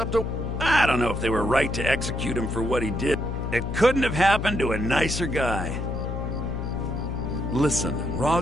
to... I don't know if they were right to execute him for what he did. It couldn't have happened to a nicer guy. Listen,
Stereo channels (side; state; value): left; noise; hum, 3 dB below the sound